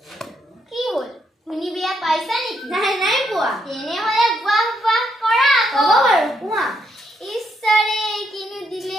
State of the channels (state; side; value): normal; both; correlation 0.76